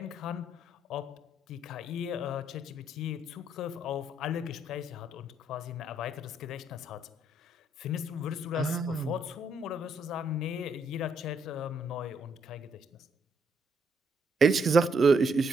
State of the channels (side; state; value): both; normal; correlation 0.73